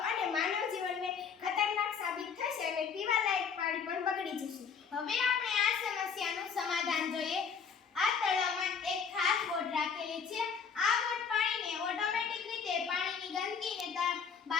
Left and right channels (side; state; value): right; quieter; 6.4 dB